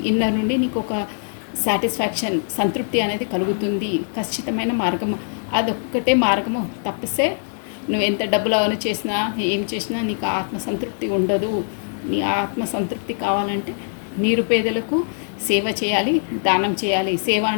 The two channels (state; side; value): silent; right; 62 dB below the other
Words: ఇన్నర్ నుండి నీకు ఒక సాటిస్ఫాక్షన్ సంతృప్తి అనేది కలుగుతుంది. ఖచ్చితమైన మార్గము అదొక్కటే మార్గము. తప్పిస్తే నువ్వు ఎంత డబ్బులు అవన్నీ చేసినా ఏం చేసినా నీకు ఆత్మసంతృప్తి ఉండదు. నీ ఆత్మసంతృప్తి కావాలంటే నిరుపేదలకు సేవ చేయాలి, దానం చేయాలి. సేవ